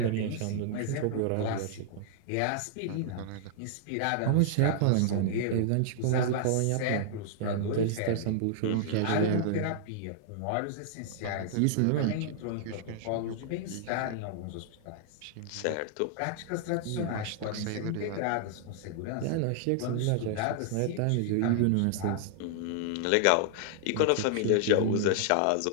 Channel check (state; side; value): different; both; correlation -0.01